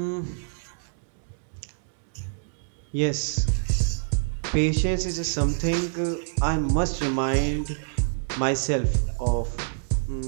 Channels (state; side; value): silent; left; digital silence